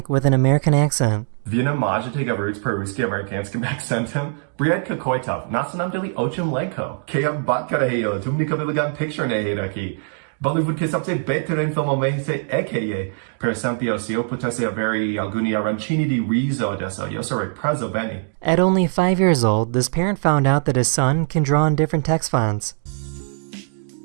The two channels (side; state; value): left; silent; digital silence